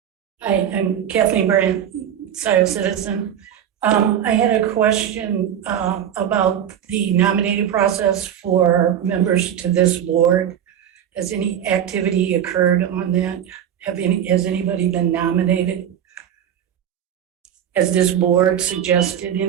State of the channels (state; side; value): quieter; left; 9.7 dB